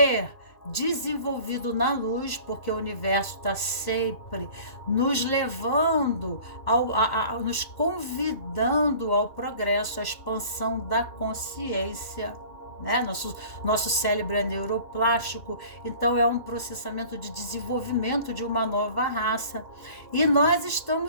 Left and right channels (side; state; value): right; late; 2.1 ms